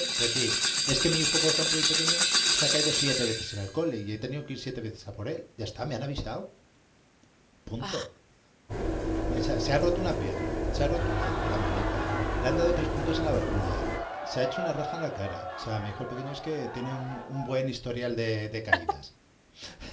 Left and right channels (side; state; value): both; identical; correlation 1.00